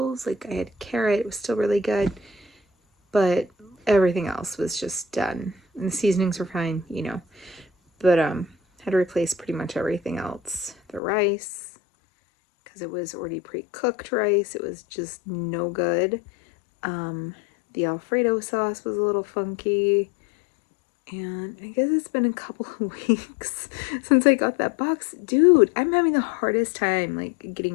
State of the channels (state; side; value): drops out; right; at 11.0 s